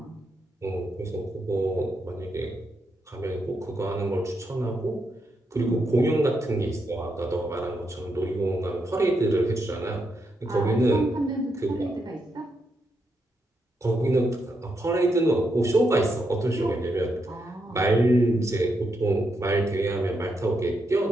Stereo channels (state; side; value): normal; both; correlation 0.82